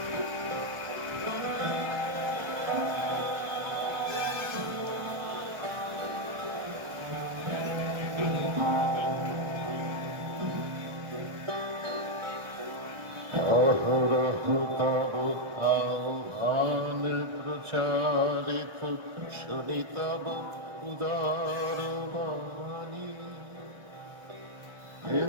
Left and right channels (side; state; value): left; late; 1.0 ms